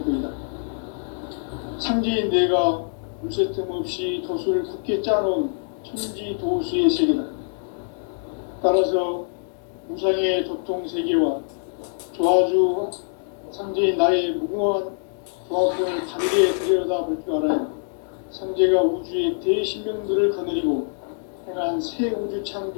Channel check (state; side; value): silent; right; digital silence